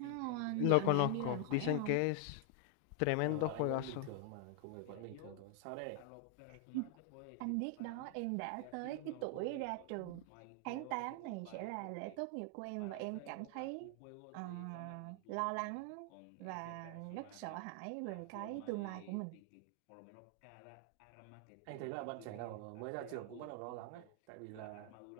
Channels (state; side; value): different; both; correlation 0.00